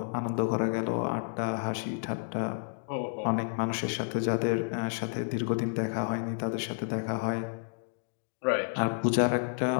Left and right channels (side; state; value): right; silent; digital silence